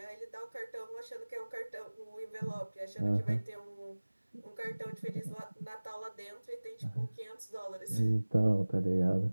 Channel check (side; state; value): both; inverted; correlation -1.00